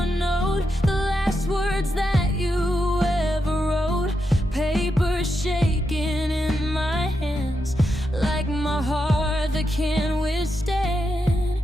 note, the last words that you ever wrote. Paper shaking in my hands like my heart that can't withstand.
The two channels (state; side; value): normal; both; correlation 0.85